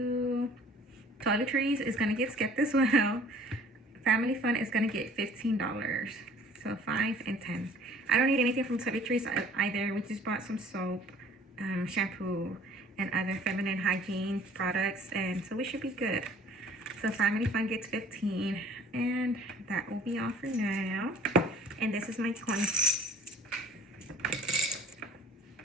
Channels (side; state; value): both; normal; correlation 0.52